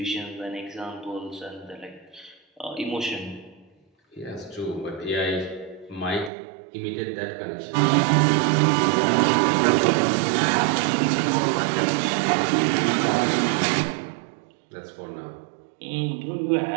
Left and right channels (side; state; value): left; drops out; at 6.3 s